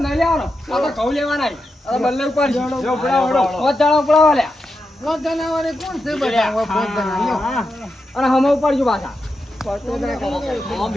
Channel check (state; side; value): normal; both; correlation 0.88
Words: નહીં લેવાનો. આ તો ઘઉં લેવાના. આ બલ્લાઈ ઉપાડશે. જો ઉપડાવો. પોત જણા ઉપડાવો લ્યા. અને હમે ઉપાડજો પાછા.